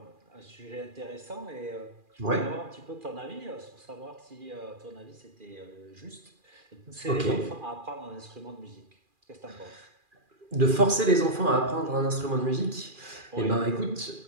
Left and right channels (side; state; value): left; late; 2.4 ms